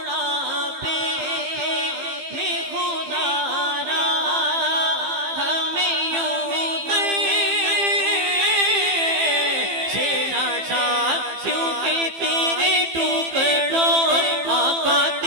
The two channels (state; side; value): late; left; 15 ms